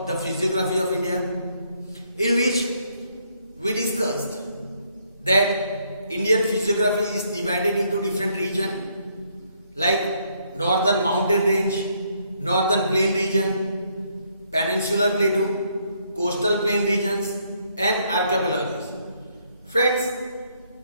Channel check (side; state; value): both; inverted; correlation -0.71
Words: the physiography of India, in which we discussed that Indian physiography is divided into different regions like Northern Mountain Range, Northern Plain region, Peninsular Plateau, Coastal Plain regions and archipelago. Friends,